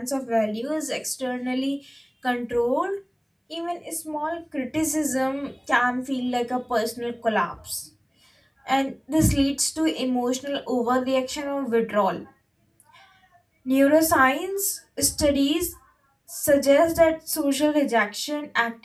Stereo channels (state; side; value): identical; both; correlation 1.00